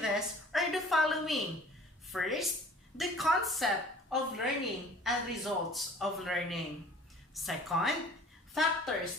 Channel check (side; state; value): both; normal; correlation 0.49